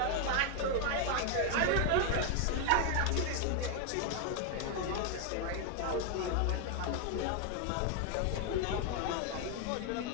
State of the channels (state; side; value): different; both; correlation 0.01